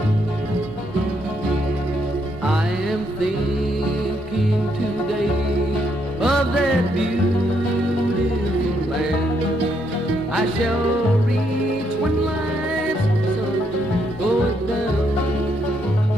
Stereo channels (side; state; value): both; normal; correlation 0.75